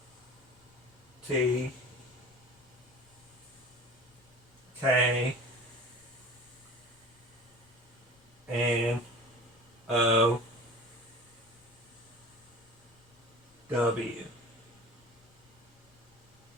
T K N O W.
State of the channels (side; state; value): left; noise; rumble, 29 dB below the sound